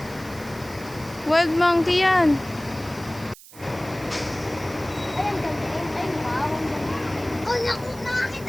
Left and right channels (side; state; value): right; noise; hiss, 20 dB below the sound